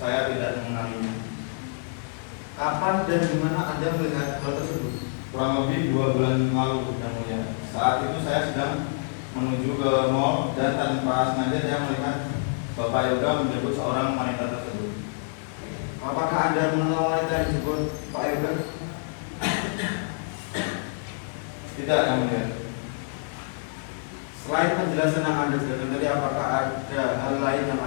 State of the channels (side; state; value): right; silent; digital silence